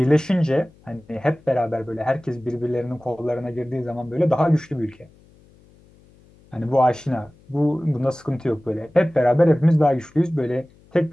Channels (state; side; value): noise; left; hum, 28 dB below the sound